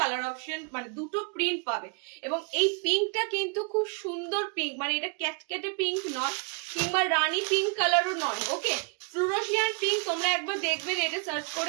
অপশন মানে দুটো প্রিন্ট পাবে। এবং এই পিঙ্কটা কিন্তু খুব সুন্দর পিঙ্ক, মানে এটা ক্যাটকেটে পিঙ্ক নয় কিংবা রানী পিঙ্ক কালারও নয়, ওকে। ফ্লুরোসিয়ান পিঙ্ক তোমরা একবার দেখবে, এটা সার্চ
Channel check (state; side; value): quieter; left; 34.2 dB